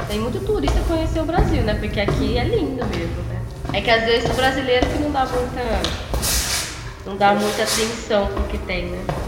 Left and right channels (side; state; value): both; identical; correlation 1.00